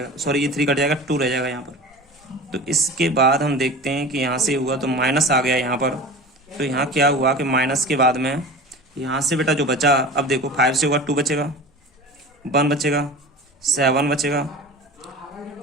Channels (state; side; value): normal; both; correlation 0.35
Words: सॉरी ये 3 कट जाएगा 2 रह जाएगा यहाँ पर। तो इसके बाद हम देखते हैं कि यहाँ से हुआ तो माइनस आ गया यहाँ पर। तो यहाँ क्या हुआ कि माइनस के बाद में यहाँ से बेटा जो बचा, अब देखो 5 से होगा 2 बचेगा, 1 बचेगा, 7 बचेगा,